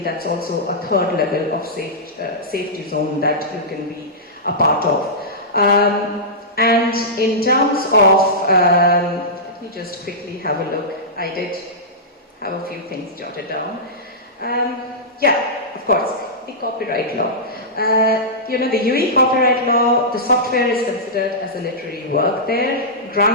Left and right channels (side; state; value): both; normal; correlation -0.14